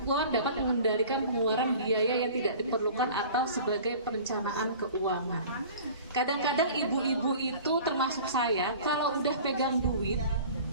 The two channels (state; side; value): inverted; both; correlation -0.43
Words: dapat mengendalikan pengeluaran biaya yang tidak diperlukan atau sebagai perencanaan keuangan. Kadang-kadang ibu-ibu itu termasuk saya, kalau udah pegang duit,